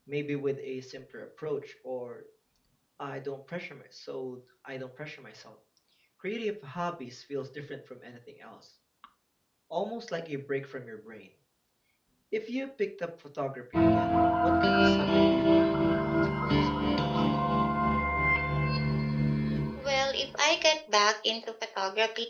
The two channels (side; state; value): both; identical; correlation 1.00